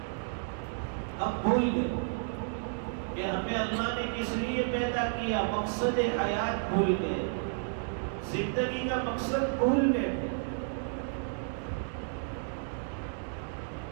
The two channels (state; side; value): silent; left; digital silence